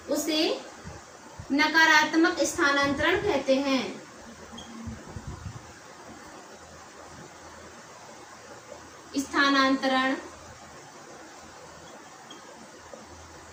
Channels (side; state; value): both; identical; correlation 1.00